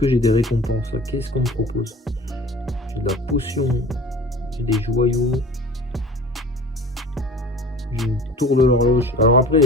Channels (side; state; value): both; normal; correlation 0.41